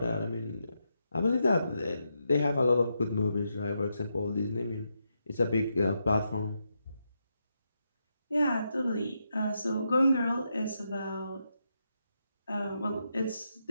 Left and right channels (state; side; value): inverted; both; correlation -0.83